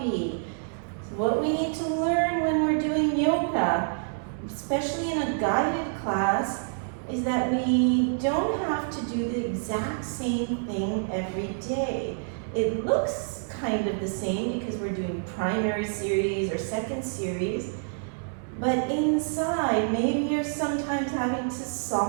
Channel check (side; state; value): left; silent; 60 dB below the other